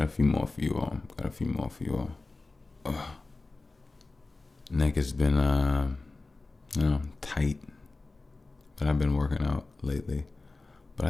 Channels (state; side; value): quieter; right; 3.4 dB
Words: a few more for you all. Neck has been, tight, but I've been working out lately. But I